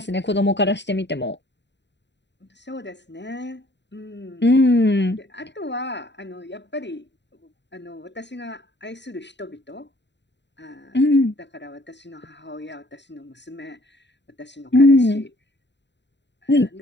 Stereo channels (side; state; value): right; late; 0.52 ms